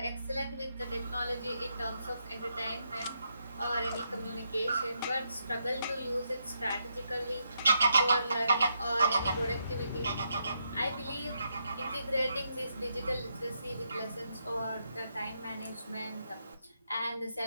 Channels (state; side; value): inverted; both; correlation -0.80